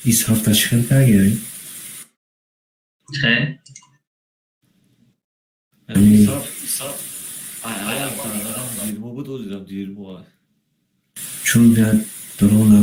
ایس هفته چخیل کرگیری چه؟ حساب ayağım tanıdan 20 bu da olacağım 20 var. چون بیاد درو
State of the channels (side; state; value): both; identical; correlation 1.00